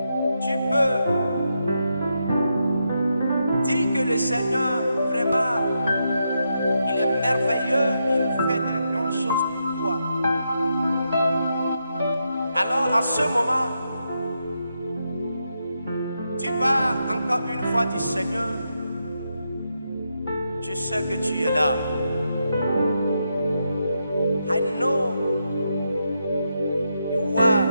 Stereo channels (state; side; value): inverted; both; correlation -0.83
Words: Tu peux dire que le Seigneur, vraiment, il est merveilleux, il fait de grandes choses pour toi. Alors, à ce moment, tu vas encore une fois dire, Seigneur, je sais que tu es là. I know you are